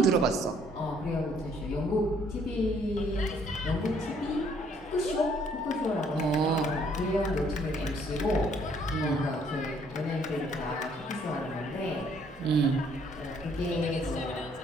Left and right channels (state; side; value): normal; both; correlation 0.64